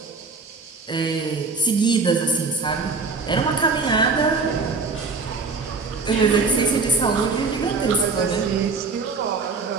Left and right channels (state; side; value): quieter; left; 4.1 dB